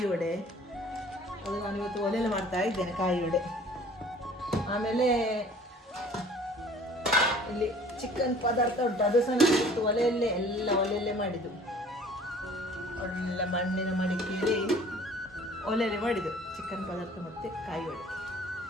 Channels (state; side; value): normal; both; correlation 0.50